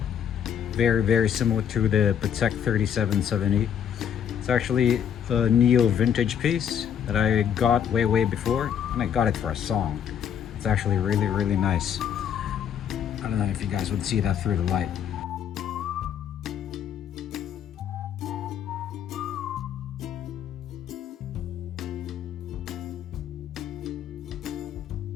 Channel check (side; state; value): right; quieter; 8.8 dB